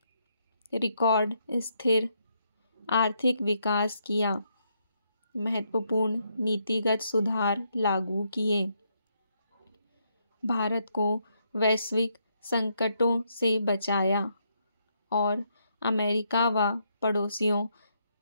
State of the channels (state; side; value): inverted; both; correlation -0.77